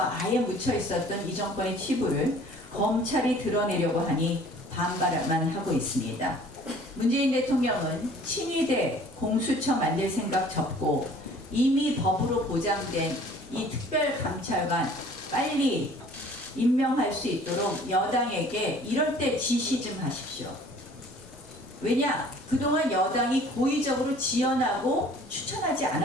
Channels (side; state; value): both; normal; correlation 0.52